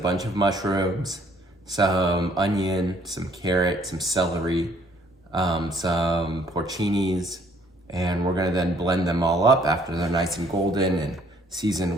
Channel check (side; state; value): both; normal; correlation 0.62